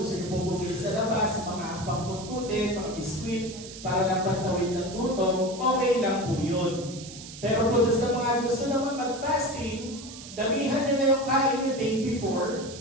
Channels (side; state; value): right; noise; hiss, 14 dB below the sound